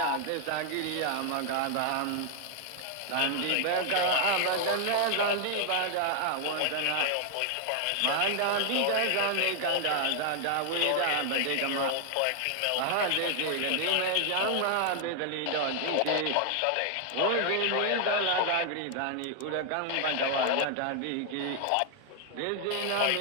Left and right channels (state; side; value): different; both; correlation 0.00